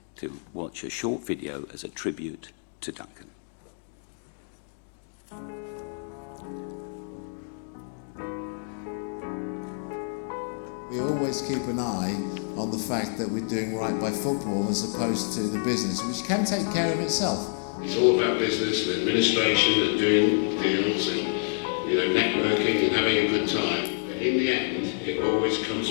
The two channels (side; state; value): right; silent; digital silence